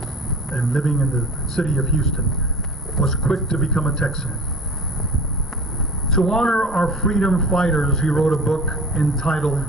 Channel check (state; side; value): normal; both; correlation 0.39